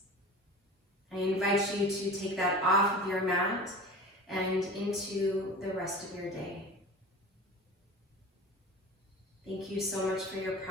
I invite you to take that off of your mat and into the rest of your day. Thank you so much for your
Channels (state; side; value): normal; both; correlation 0.36